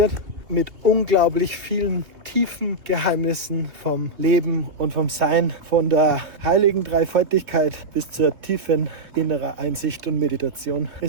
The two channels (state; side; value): late; left; 2.6 ms